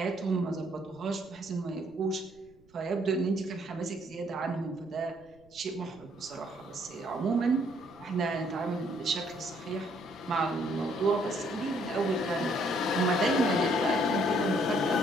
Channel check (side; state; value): right; noise; rumble, 29 dB below the sound